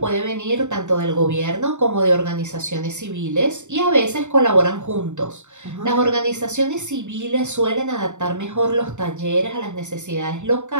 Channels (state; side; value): late; left; 0.84 ms